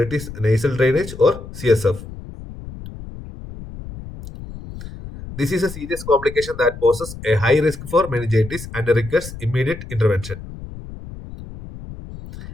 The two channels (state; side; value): noise; left; rumble, 13 dB below the sound